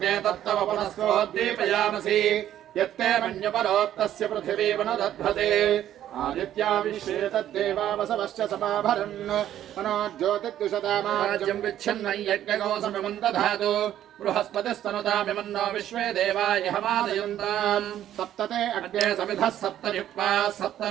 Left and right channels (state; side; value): quieter; left; 11.6 dB